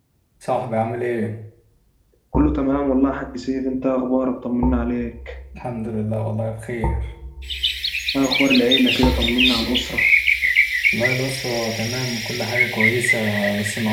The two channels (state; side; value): identical; both; correlation 1.00